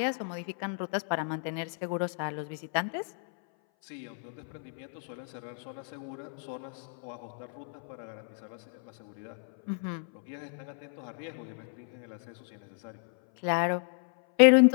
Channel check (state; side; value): silent; right; 56 dB below the other